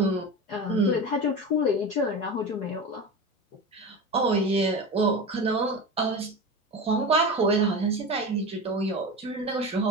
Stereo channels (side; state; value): both; normal; correlation 0.27